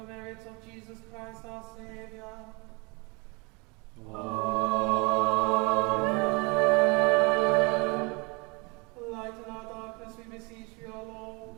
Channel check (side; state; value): left; quieter; 28.7 dB